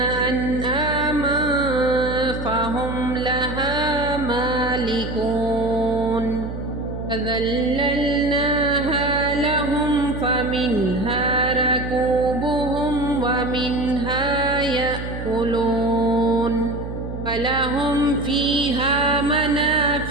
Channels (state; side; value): noise; right; hum, 8 dB below the sound